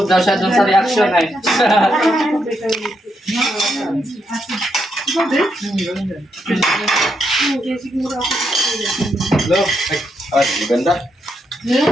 daw siya dun sa reaction eh. Hello? Ay, maganda. Ngayon,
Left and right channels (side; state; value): both; normal; correlation 0.80